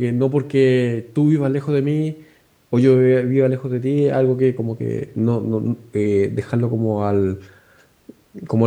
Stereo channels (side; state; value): both; identical; correlation 1.00